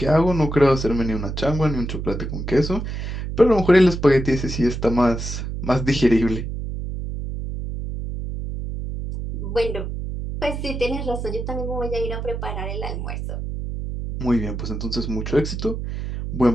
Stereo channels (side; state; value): right; noise; hum, 5 dB below the sound